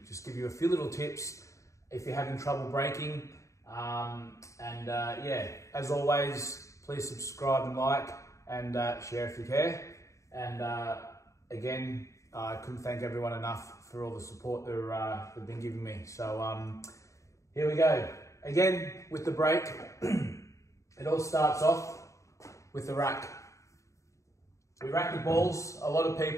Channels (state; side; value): late; right; 0.15 ms